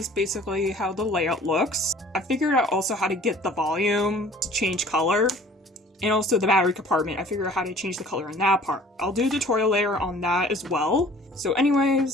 basically how the layout looks. I figured out also how to get the volume to change color. And also the battery compartment, I figured out how to change the color in that part. I'll do a tutorial later on that as well. So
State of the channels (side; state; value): both; normal; correlation 0.50